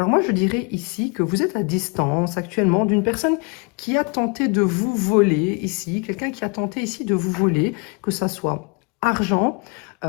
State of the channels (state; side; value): quieter; right; 33.1 dB